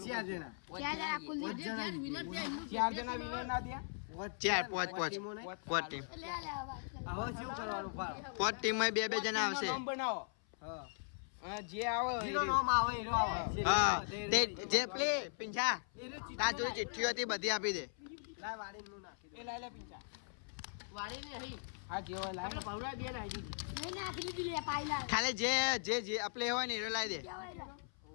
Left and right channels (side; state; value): right; silent; 52 dB below the other